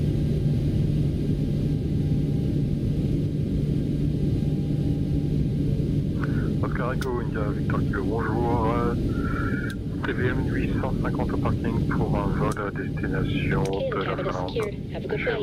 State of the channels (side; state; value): both; identical; correlation 1.00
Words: Oscar Echo, India Victor Kilo, bonjour. TVM 850 au parking pour un vol à destination Okay, de the la cabin is Finlande. secured. Have a good flight.